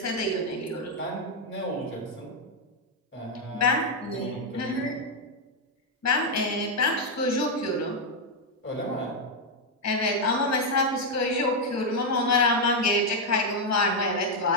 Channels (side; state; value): both; normal; correlation 0.01